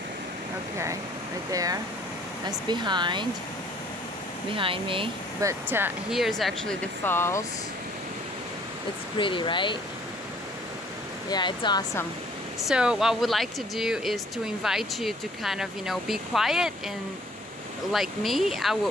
Okay, right there. That's behind me. But here's actually the falls. It's pretty, right? Yeah, it's awesome. So what I would like to do is to invite you to kind of, be quiet and like me,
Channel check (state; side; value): normal; both; correlation 0.58